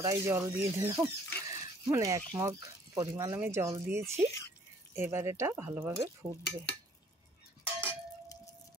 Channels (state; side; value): normal; both; correlation 0.58